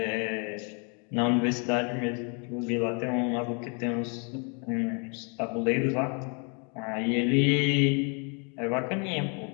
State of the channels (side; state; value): right; quieter; 36.7 dB